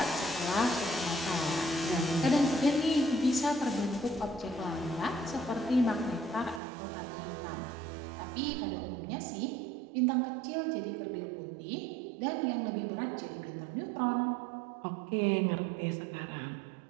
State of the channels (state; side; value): drops out; left; at 6.6 s